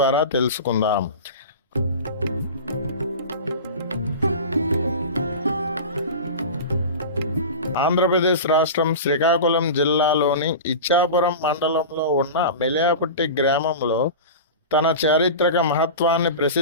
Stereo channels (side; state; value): both; inverted; correlation -0.30